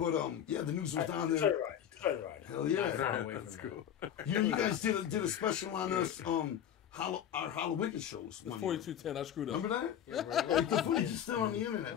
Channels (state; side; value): quieter; right; 9.8 dB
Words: yeah, the news was down Try there. to ride. Try to ride. Hell yeah. That's cool. You guys did a special on us, our Halloween shows. It's one year. 4210. I screwed up. Remember that? Like, the footage is still on the internet.